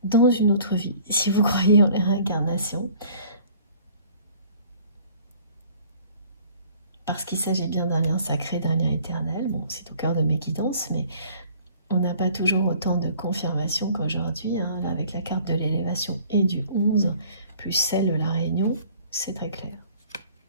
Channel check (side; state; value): both; inverted; correlation -0.53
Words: dans une autre vie, si vous croyez en les réincarnations, parce qu'il s'agit bien d'un lien sacré, d'un lien éternel. Bon, c'est au cœur de mes guidances, mais on n'a pas toujours autant de confirmation qu'aujourd'hui. Hein. Là, avec la carte de l'élévation et du 11, plus celle de la réunion, c'est très clair.